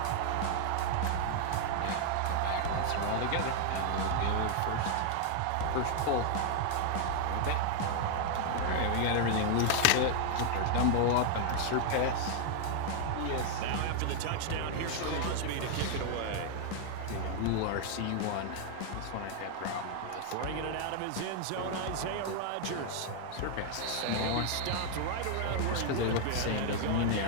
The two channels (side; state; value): both; different; correlation 0.00